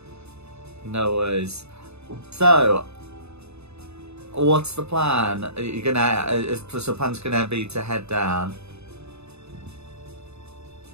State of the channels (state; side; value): late; left; 0.80 ms